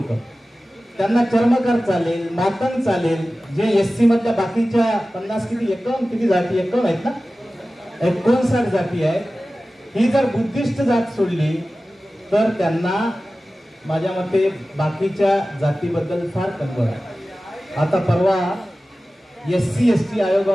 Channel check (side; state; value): both; normal; correlation 0.96